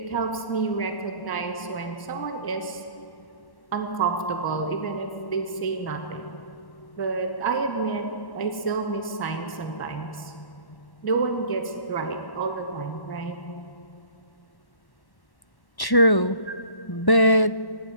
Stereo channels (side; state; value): right; late; 1.1 ms